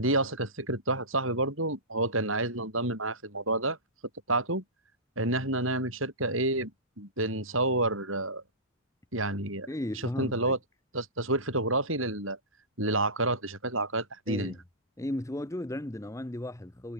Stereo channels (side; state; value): both; normal; correlation -0.20